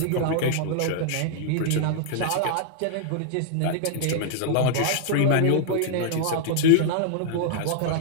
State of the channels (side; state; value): both; different; correlation -0.01